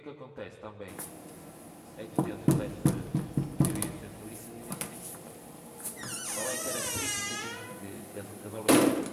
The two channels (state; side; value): identical; both; correlation 1.00